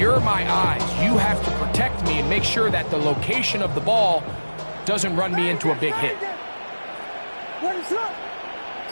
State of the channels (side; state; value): both; inverted; correlation -1.00